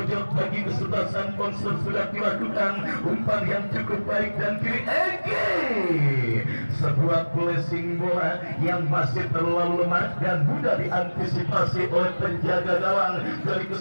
bagi kesebelasan Ponser sudah dilakukan, umpan yang cukup baik dan kiri sebuah blessing bola yang masih terlalu lemah dan mudah diantisipasi oleh penjaga gawang dari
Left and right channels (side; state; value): both; inverted; correlation -1.00